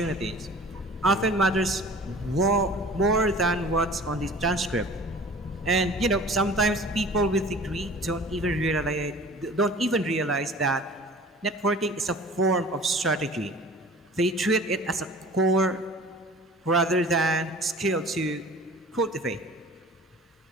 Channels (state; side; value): normal; both; correlation 0.44